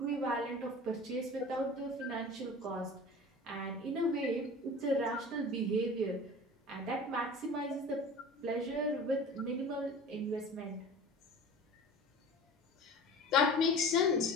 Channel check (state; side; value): normal; both; correlation 0.38